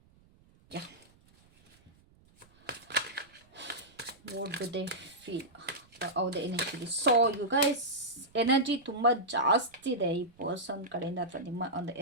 Yeah, what do they feel? ಹೌದೇ energy. So you guys, energy ತುಂಬ ಜಾಸ್ತಿ ಇದೆ ಈ ಪರ್ಸನ್ ಕಡೆಯಿಂದ, ಅಥವಾ ನಿಮ್ಮ ಒಂದು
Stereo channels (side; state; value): right; noise; rumble, 30 dB below the sound